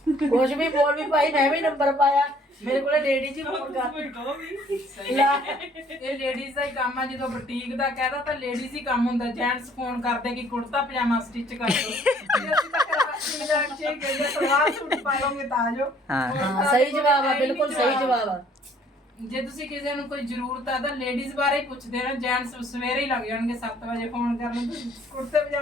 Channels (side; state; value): both; normal; correlation 0.60